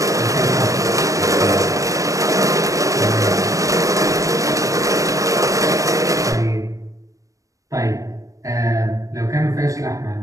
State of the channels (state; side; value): late; left; 0.16 ms